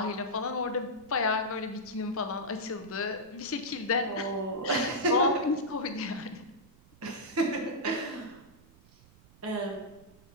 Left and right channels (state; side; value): noise; right; rumble, 25 dB below the sound